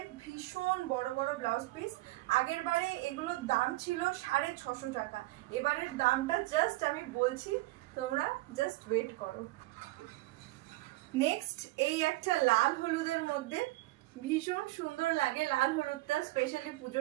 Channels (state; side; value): quieter; left; 19.9 dB